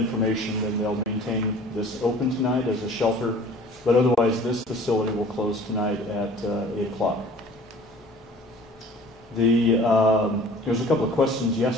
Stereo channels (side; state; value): both; normal; correlation 0.48